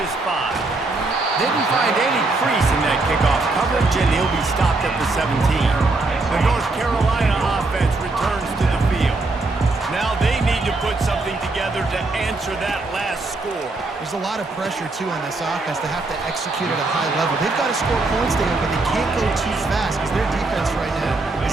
5. Didn't find any crease in that kickoff coverage, and he'll be stopped at the 17. The North Carolina offense returns to the field. Now they need to put something together to answer that last score. There's a lot of pressure, too, on this offense. They have to execute at a high level. They've got to score points there, but they can't go too fast because their defense right now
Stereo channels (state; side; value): quieter; left; 3.3 dB